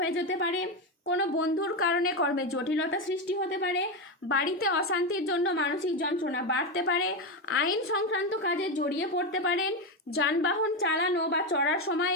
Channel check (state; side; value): normal; both; correlation 0.12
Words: যেতে পারে। কোনো বন্ধুর কারণে কর্মে জটিলতা সৃষ্টি হতে পারে, বাড়িতে অশান্তির জন্য মানসিক যন্ত্রণা বাড়তে পারে, আইন সংক্রান্ত কাজে জড়িয়ে পড়তে পারেন, যানবাহন চালানো বা চড়ার সময়